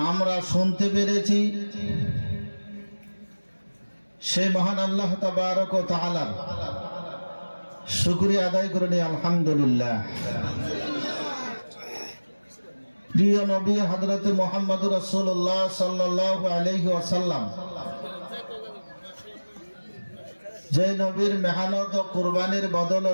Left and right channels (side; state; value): both; inverted; correlation -1.00